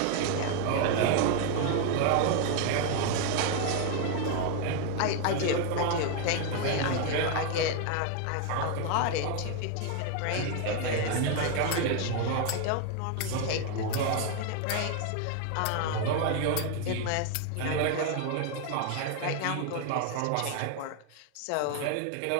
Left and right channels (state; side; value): different; both; correlation 0.01